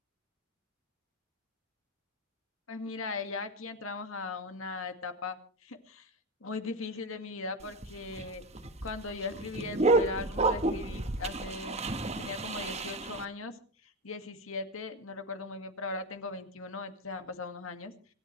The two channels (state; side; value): normal; both; correlation 0.16